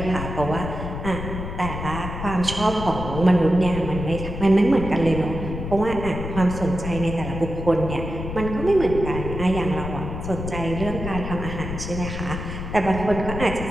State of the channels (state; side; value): noise; left; rumble, 6 dB below the sound